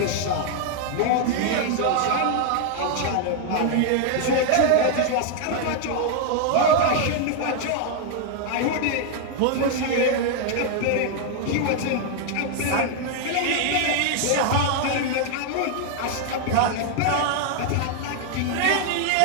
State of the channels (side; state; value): both; different; correlation 0.00